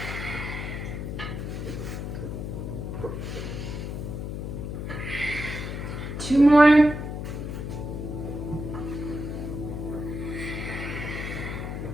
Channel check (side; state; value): left; noise; hum, 5 dB below the sound